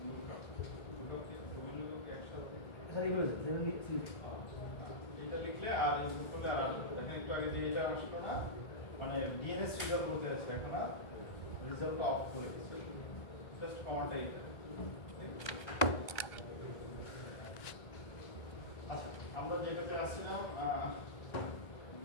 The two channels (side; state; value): right; late; 1.3 ms